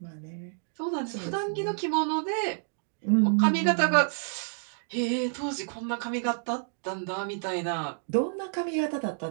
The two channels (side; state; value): left; silent; digital silence